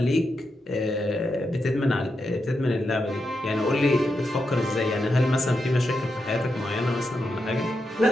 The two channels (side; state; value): both; normal; correlation 0.86